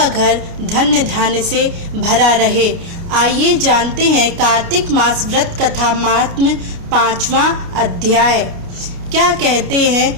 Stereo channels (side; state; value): left; late; 29 ms